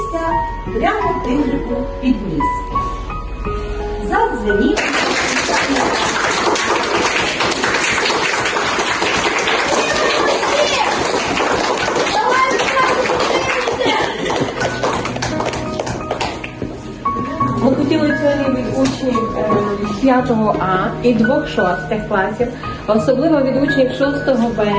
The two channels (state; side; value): identical; both; correlation 1.00